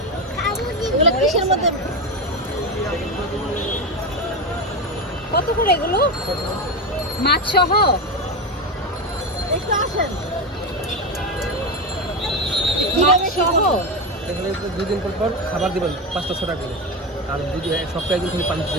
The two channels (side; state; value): both; normal; correlation 0.16